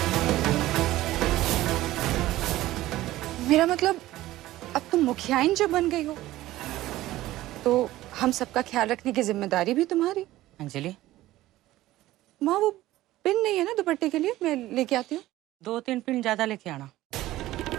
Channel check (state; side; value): quieter; left; 16.0 dB